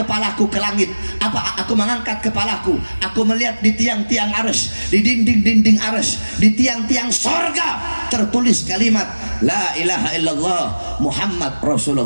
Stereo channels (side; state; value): both; inverted; correlation -1.00